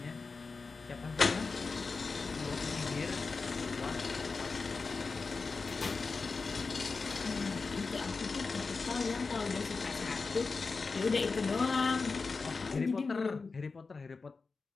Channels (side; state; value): right; quieter; 4.3 dB